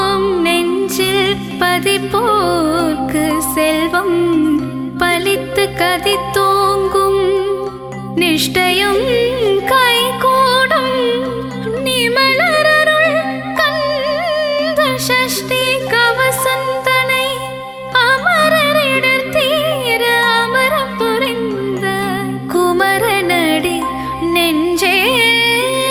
நெஞ்சில் பதிப்போர்க்கு செல்வம் பலித்து கதித்தோங்கும் நிஷ்டையும் கைகூடும் நிமலரருள் கந்த சஷ்டி கவசந்தனை அமரரிடர் தீர அமரம் புரிந்த குமரனடி நெஞ்சே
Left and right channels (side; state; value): both; identical; correlation 1.00